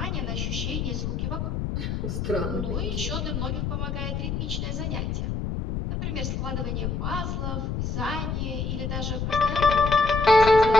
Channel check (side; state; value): left; noise; rumble, 2 dB below the sound